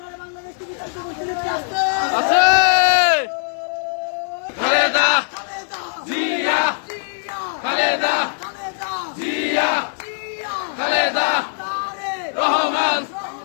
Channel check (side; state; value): right; silent; digital silence